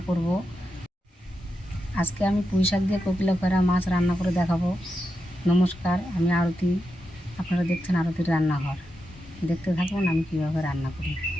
করব। আজকে আমি পুঁই শাক দিয়ে কোকিলা খোরা মাছ রান্না করে দেখাবো। নমস্কার, আমি আরতি, আপনারা দেখছেন আরতির রান্নাঘর। দেখতে থাকুন আমি কীভাবে রান্না করি।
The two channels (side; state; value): both; normal; correlation 0.87